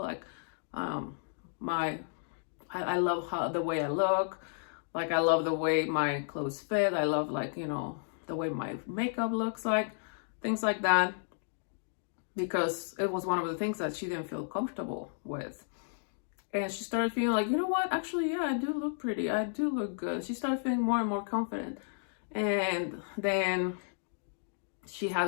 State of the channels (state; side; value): silent; right; digital silence